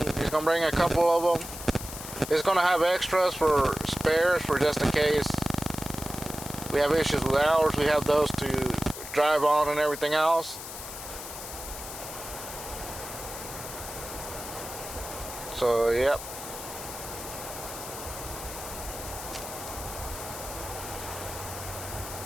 he's going to bring a couple of them. He's going to have extras for spares, for just in case we have issues with ours. We have those to drive on and everything else. So, yep.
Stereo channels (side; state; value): left; noise; hiss, 10 dB below the sound